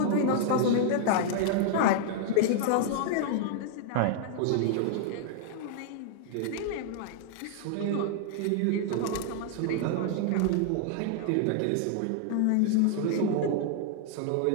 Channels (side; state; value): both; different; correlation 0.00